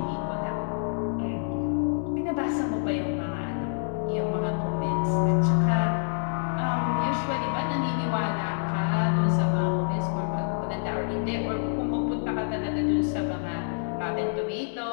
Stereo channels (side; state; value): right; silent; 60 dB below the other